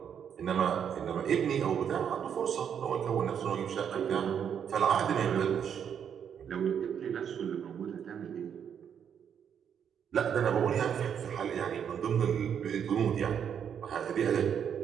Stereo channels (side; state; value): left; quieter; 8.1 dB